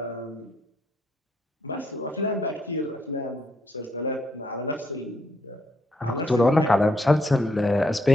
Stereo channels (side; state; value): both; normal; correlation 0.75